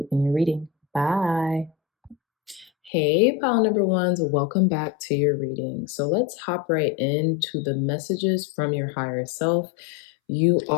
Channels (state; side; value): drops out; right; at 2.9 s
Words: in your reading. Bye. Hey, pile number ones, welcome back to your reading. So let's hop right into the messages from your higher self. You